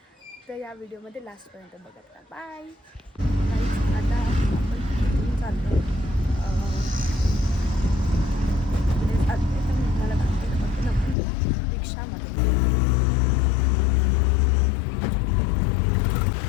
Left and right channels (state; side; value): drops out; right; at 11.2 s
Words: तर या व्हिडिओमध्ये लास्टपर्यंत बघत राहा. बाय. आता आपण चाललो आहे मला दाखवेल आपण रिक्षामध्ये.